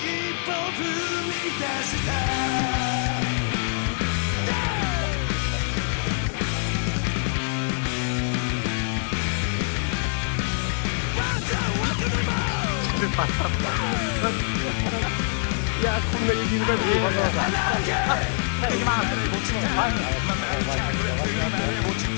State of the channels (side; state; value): right; silent; 61 dB below the other